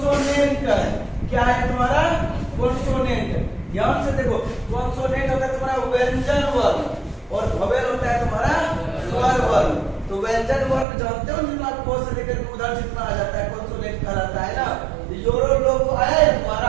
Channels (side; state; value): left; drops out; at 10.9 s